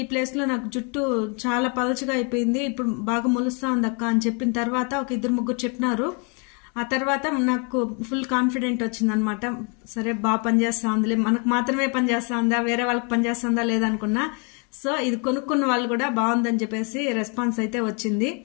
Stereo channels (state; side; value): quieter; right; 35.7 dB